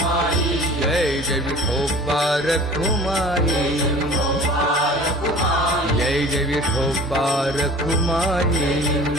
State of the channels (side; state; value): both; normal; correlation 0.44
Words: जय जय विठोबा रखुमाई जय जय विठोबा रखुमाई